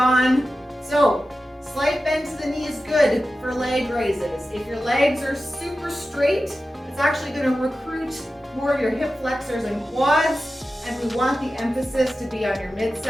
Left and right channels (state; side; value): normal; both; correlation 0.93